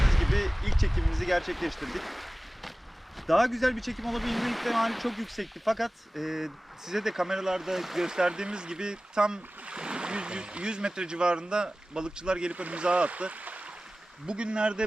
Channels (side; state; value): both; normal; correlation 0.97